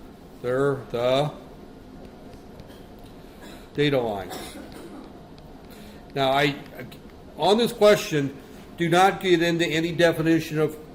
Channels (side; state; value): both; identical; correlation 1.00